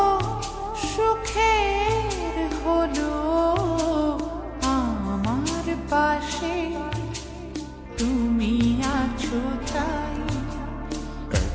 সুখের হলো আমার পাশে তুমি আছো তাই।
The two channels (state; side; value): identical; both; correlation 1.00